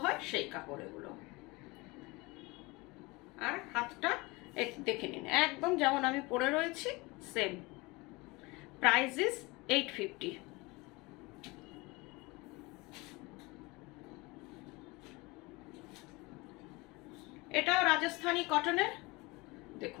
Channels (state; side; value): quieter; right; 24.2 dB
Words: হয় সেই কাপড় এগুলো। আর হাতটা দেখে নিন, একদম যেমন আমি পরে রয়েছি সেম। Price is 850। এটাও রাজস্থানী কটনের,